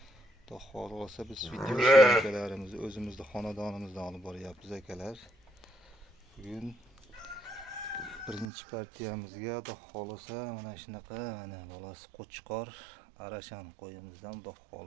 Xudo xolasa biz video syomkalarimizni o'zimizning xonadonimizdan olib boryapmiz akalar. Bugun birinchi partiyamizga xudo xolasa mana shunaqa mana bolasi qo'chqor arashan qo'yimizdan xudo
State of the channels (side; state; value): left; drops out; at 8.5 s